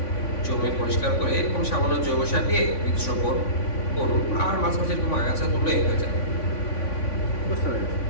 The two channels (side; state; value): right; late; 3.5 ms